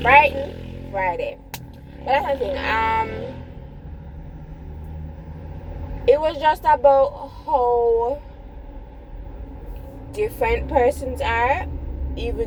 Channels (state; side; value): identical; both; correlation 1.00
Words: frightened Friday. But that's something. It was just about how different persons are,